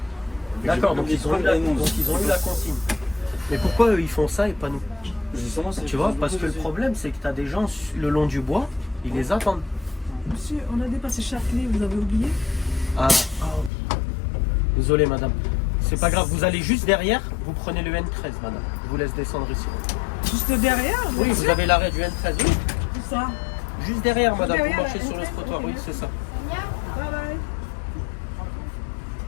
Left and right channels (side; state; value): right; drops out; at 13.7 s